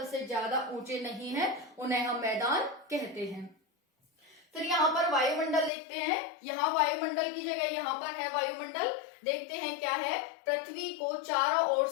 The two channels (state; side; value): drops out; right; at 5.7 s